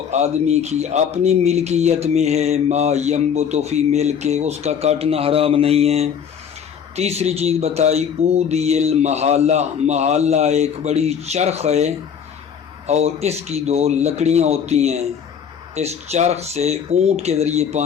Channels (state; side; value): quieter; right; 7.7 dB